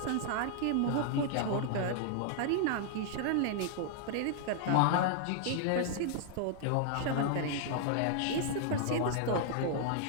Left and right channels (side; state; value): both; different; correlation -0.01